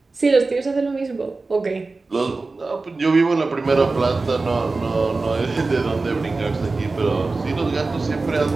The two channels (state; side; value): quieter; left; 3.6 dB